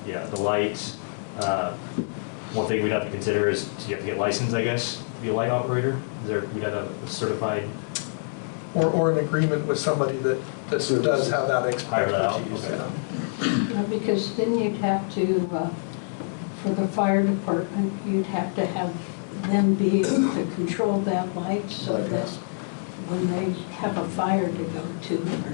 yeah, the lights. One thing we'd have to consider is, you have to get licensed, I guess, to be a light operator? We'd have a certified. Or an agreement with somebody that does have that Hire that out, expertise. okay. Yeah. Because then you'd have to, for the fire department, you'd have to have them be able to control that light so that when they have a fire to go to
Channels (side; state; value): right; silent; digital silence